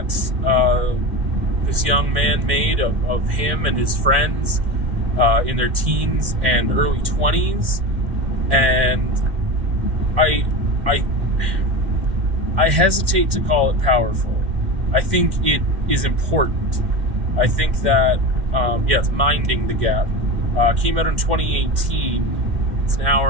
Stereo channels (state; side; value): late; left; 2.1 ms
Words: this young man made of him and his friends in their teens and early 20s. And I hesitate to call it powerful. I think it is important. I think that, it's Minding the Gap. Came out in 2018. It's an hour